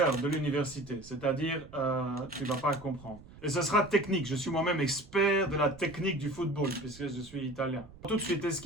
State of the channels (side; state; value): right; noise; rumble, 20 dB below the sound